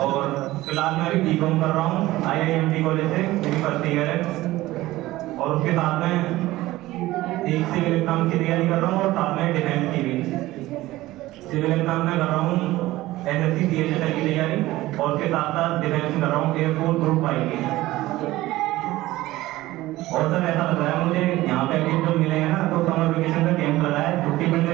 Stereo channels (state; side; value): quieter; left; 17.3 dB